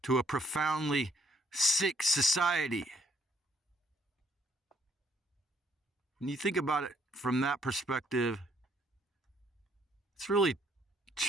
to a profoundly sick society. When you think about it from that perspective, it's really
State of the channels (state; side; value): normal; both; correlation 0.67